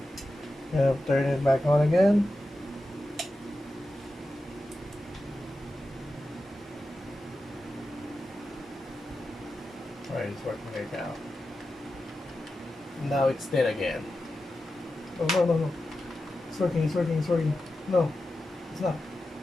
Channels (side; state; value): both; normal; correlation 0.91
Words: I'll turn it back on again. Alright, it's working right now. Now it's dead again. Oh, no, no, no. It's working, it's working, it's working. No, it's not.